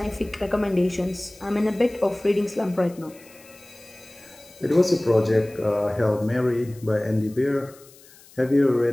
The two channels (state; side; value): noise; left; hiss, 24 dB below the sound